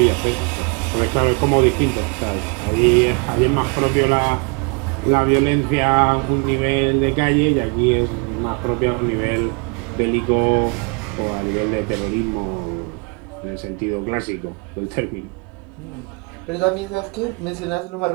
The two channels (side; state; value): left; quieter; 33.2 dB